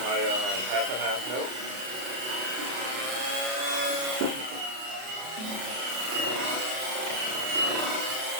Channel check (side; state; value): left; late; 32 ms